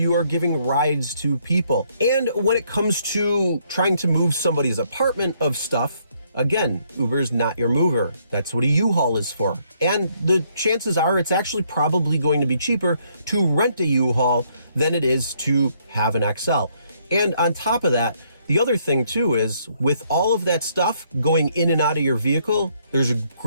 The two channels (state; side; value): inverted; both; correlation -0.69